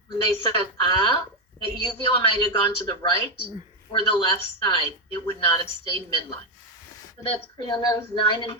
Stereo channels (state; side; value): normal; both; correlation 0.06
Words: when they said, ah, the uvula might have gone to the right or the left side. It would not have stayed midline. So that's cranial nerves 9 and